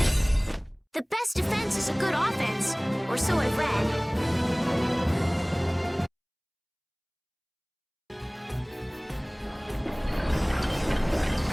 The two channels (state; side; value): identical; both; correlation 1.00